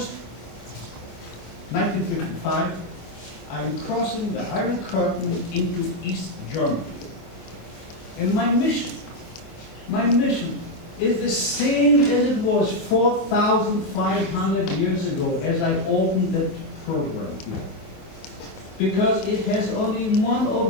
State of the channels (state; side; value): late; right; 25 ms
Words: 1955, I am crossing the Iron Curtain into East Germany. And my mission is the same as it was 4,500 years ago as I opened that program here. Because it has only one